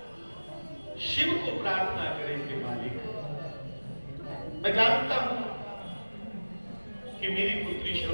शिव को प्रार्थना करें कि मालिक, मैं जानता हूं कि मेरी पुत्री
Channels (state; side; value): inverted; both; correlation -1.00